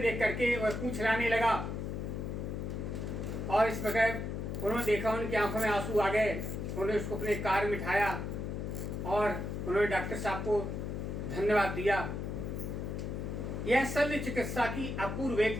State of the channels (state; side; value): noise; left; hum, 4 dB below the sound